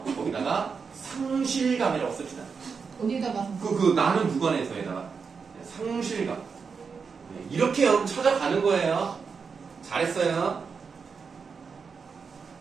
거기다가 상실감이라고 씁시다. 어디다가? 나는 무관해서에다가 상실감. 네, 이렇게 여러분 찾아가는 거예요. 잘했어요.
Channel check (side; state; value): left; quieter; 5.5 dB